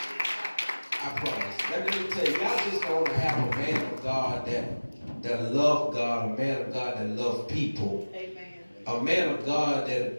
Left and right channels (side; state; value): both; inverted; correlation -1.00